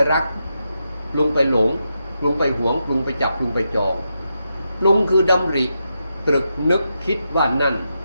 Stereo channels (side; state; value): both; inverted; correlation -0.85